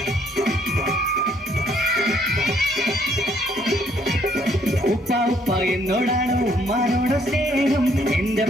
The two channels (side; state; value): both; normal; correlation 0.67